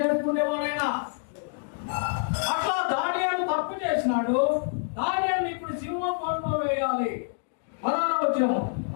అట్లా దానియేలు తప్పు చేసినాడు. దానియేలు ఇప్పుడు సింహం బోన్లో వేయాలి. 16వ వచనము,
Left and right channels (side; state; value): right; silent; 59 dB below the other